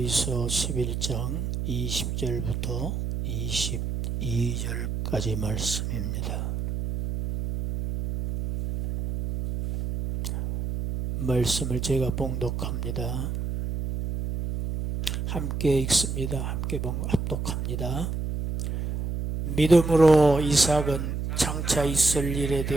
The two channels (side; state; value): right; noise; hum, 3 dB below the sound